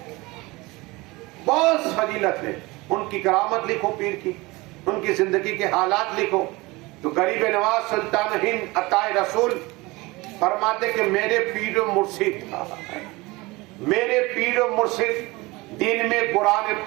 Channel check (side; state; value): left; quieter; 22.7 dB